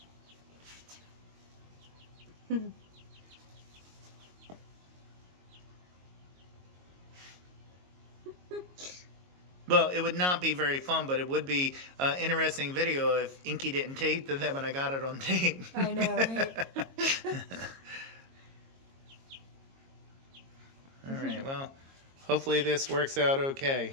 Well, it would not be very fun, but it would be an interesting video if Inky didn't tape to them and I got it on tape. I know, right? All right, well, hopefully this works out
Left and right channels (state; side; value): late; left; 22 ms